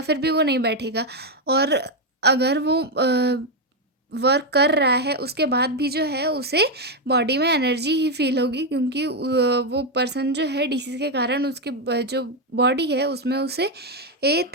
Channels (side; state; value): both; normal; correlation 0.04